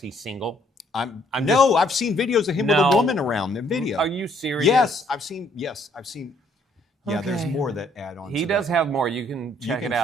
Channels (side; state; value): both; normal; correlation 0.65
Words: he's single. I've seen videos of him with a woman around the video. Are you serious? Yes, I've seen. Yeah, there's more that add on. He does have more. You can check it